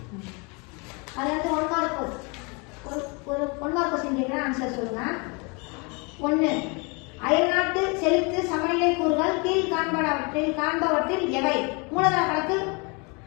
அதாவது ஒரு 1 மார்க் கொஸ்டின் கேட்குறேன், ஆன்சர் சொல்லுங்க. 1. அயல்நாட்டு செலுத்து சமநிலை கூறுகள் கீழ் காண்பவற்றில் எவை? மூலதன கணக்கு,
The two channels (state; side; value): quieter; right; 30.8 dB